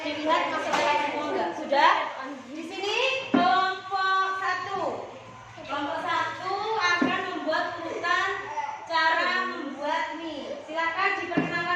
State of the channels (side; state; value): both; identical; correlation 1.00